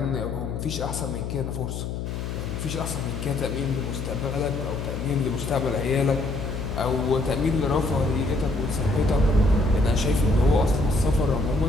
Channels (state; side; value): noise; left; hum, 5 dB below the sound